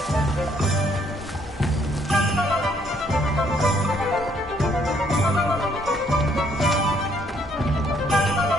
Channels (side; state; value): both; normal; correlation 0.67